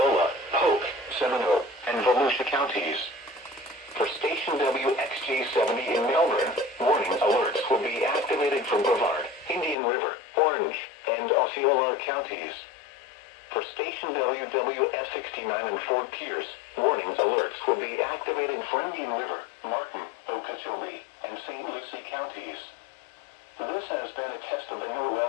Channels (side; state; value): right; drops out; at 9.8 s